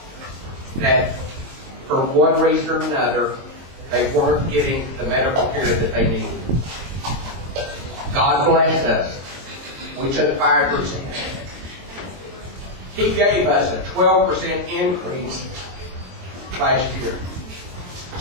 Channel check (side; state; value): left; late; 23 ms